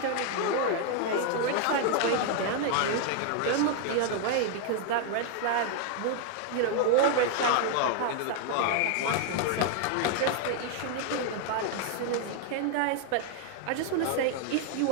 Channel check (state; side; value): different; both; correlation 0.00